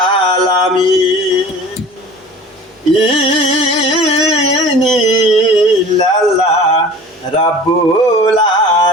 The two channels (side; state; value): both; normal; correlation 0.42